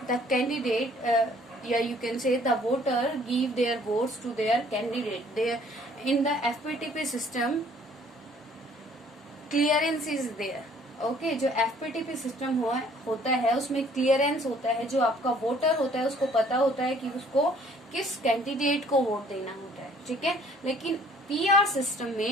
the candidate, you can say the voter give their votes to their candidate. In the FPTP system, clearance is there. Okay, जो FPTP system होता है उसमें क्लियरेंस होता है. जो आपका वोटर होता है उसको पता होता है कि उसको किस कैंडिडेट को वोट देना होता है. ठीक है. लेकिन PR सिस्टम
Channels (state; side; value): normal; both; correlation 0.57